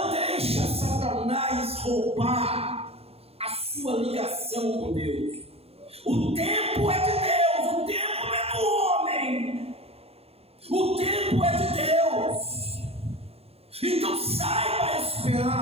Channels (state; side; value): late; left; 0.29 ms